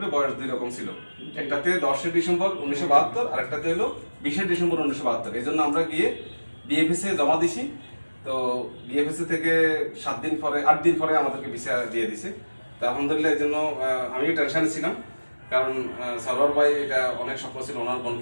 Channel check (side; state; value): both; inverted; correlation -1.00